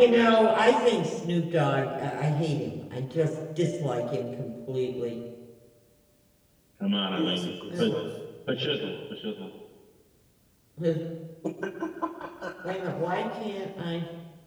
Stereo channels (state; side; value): identical; both; correlation 1.00